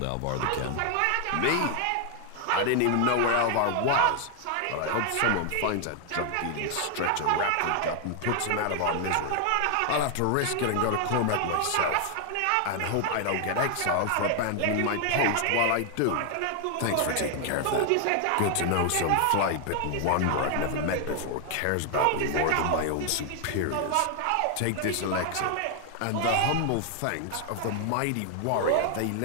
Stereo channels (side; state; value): both; different; correlation 0.00